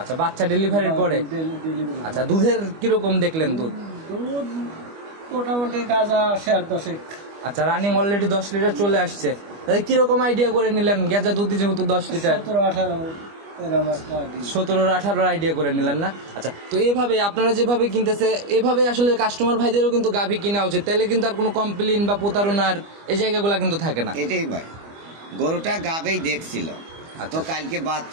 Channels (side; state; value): left; late; 25 ms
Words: বাচ্চা ডেলিভারির পরে। আচ্ছা, দুধের কিরকম দেখলেন? দুধ মোটামুটি গাজা 10.5। আচ্ছা, রানিং অলরেডি 10 লিটার চলে আসছে। কিরকম আইডিয়া করে নিলেন? গেজা দুধ যেহেতু 10 লিটার, 17-18 আইডিয়া করে নিলেন না? আচ্ছা, তো এভাবে আপনারা যেভাবে কিনতেছে, এভাবে আসলে কাস্টমার ভাইদেরও কিন্তু গাভী কিনা উচিত, তাহলে কিন্তু আর কোনো কমপ্লেইন বা প্রতারণার এই জায়গাগুলো কিন্তু থাকে না। এটাই ভাই, গরুটা গাভী দেখছিল তো কালকে